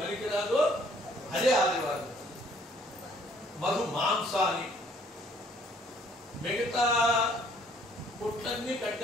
అదే ఆదివారం. మధు మాంసాన్ని మిగతా కొట్లన్నీ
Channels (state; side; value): normal; both; correlation 0.61